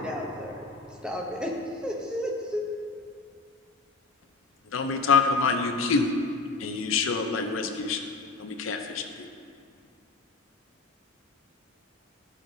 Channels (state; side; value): quieter; right; 3.7 dB